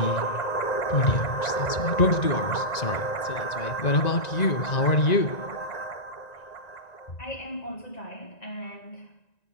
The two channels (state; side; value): late; right; 1.9 ms